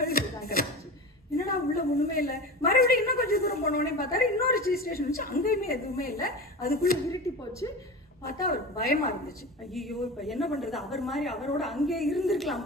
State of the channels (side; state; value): both; normal; correlation 0.30